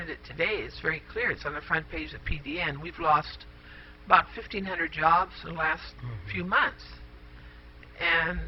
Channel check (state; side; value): identical; both; correlation 1.00